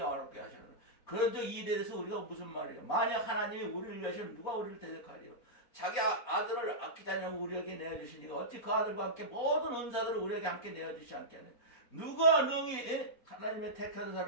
하시는 그런 적 이에 대해서 우리가 무슨 말이에요? 만약 하나님이 우리를 위하시면 누가 우리를 대적하리요? 자기 아들을 아끼지 않냐고 우리에게 내어주시니까 어찌 그 아들과 함께 모든 은사들을 우리에게 함께 내어주시지 않겠느냐? 누가 능히 하나님의 택한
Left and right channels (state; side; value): late; right; 4.2 ms